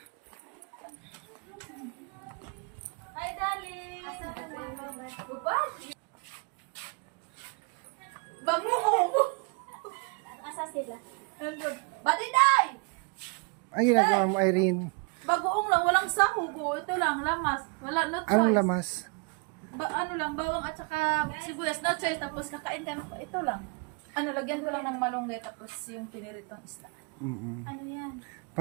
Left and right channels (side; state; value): left; quieter; 33.0 dB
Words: Hi, darling. Bag mo ko! Asa sila? Badiday! Ang ginagawa mo, Irene? Bagoong lang, walang sahog. Ito lang, lamas. Wala, no choice. Anong lamas? Ano lang, bawang at saka sibuyas, no choice. Tapos kakain ka, ito lang. Lagyan ko lang ng malunggay tapos yung piniritong isda. Ano yan?